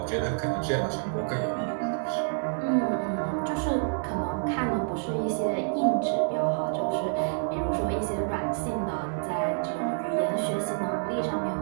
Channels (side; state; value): left; silent; digital silence